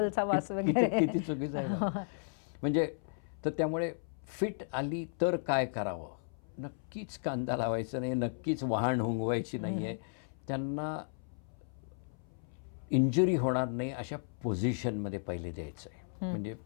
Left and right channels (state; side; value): silent; right; 55 dB below the other